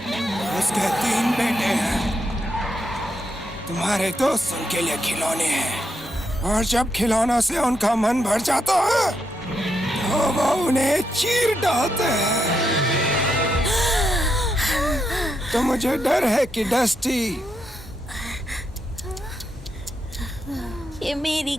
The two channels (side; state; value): both; normal; correlation 0.82